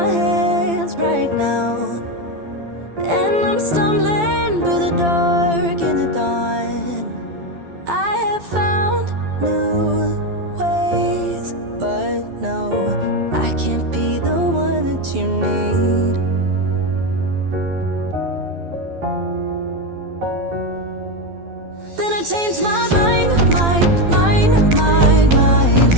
hands right now, and I'm stumbling through the dark in the dawn. I have found new ways, but no, I can't be the one that you need. Then I changed my mind.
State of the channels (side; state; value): left; late; 12 ms